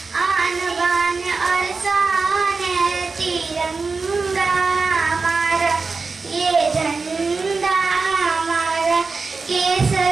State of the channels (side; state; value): left; quieter; 4.3 dB